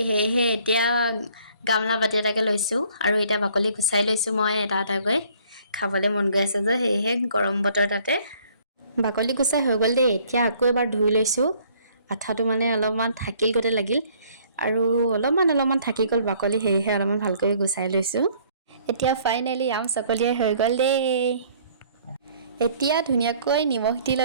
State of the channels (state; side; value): inverted; both; correlation -0.59